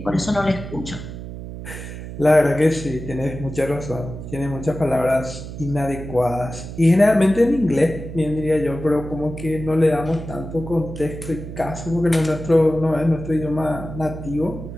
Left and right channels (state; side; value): noise; right; hum, 10 dB below the sound